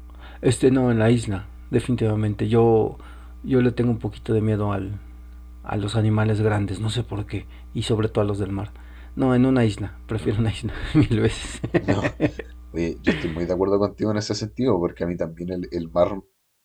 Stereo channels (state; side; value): identical; both; correlation 1.00